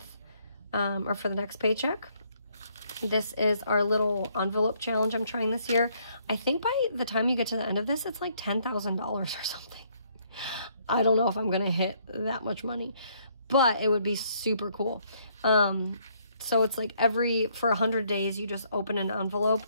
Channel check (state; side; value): inverted; both; correlation -0.68